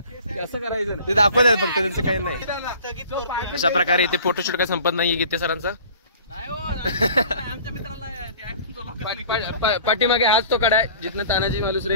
असं करायचं नाही. ते दाखवत फक्त, त्यांचं काही नाही. अशा प्रकारे इथे फोटोशूट काय संपत नाहीये गीते सरांचा. आमच्या मित्राला पाठीमागे हाच तो कडा आहे जिथनं तानाजी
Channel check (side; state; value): both; inverted; correlation -0.47